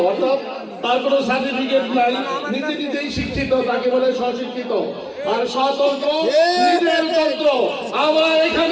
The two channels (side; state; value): both; identical; correlation 1.00